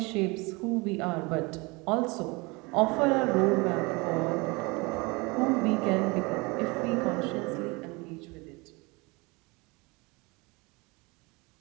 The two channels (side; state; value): left; quieter; 26.3 dB